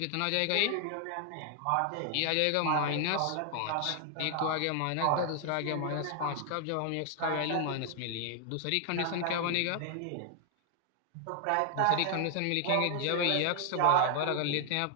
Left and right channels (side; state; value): both; different; correlation 0.00